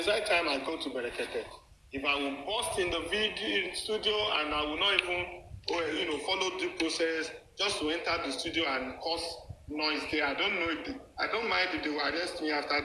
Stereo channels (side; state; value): both; identical; correlation 1.00